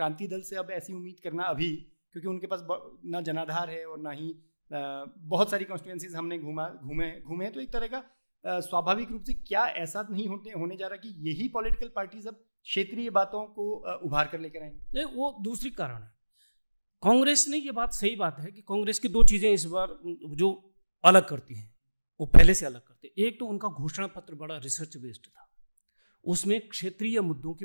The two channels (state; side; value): inverted; both; correlation -1.00